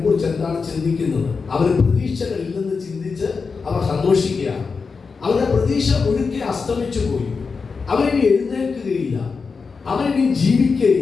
എന്താണ് ചിന്തിക്കുന്നത്? അവർ പ്രതീക്ഷകളില്ലെന്ന് ചിന്തിച്ച് അവർ സന്തോഷിക്കുകയാണ്. അവരുടെ പ്രതീക്ഷ ഒഴുക്കി അസ്തമിച്ചു പോയി. അവരിനി എഴുന്നേൽക്കുകയില്ല, അവനിനി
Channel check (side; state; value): right; quieter; 4.9 dB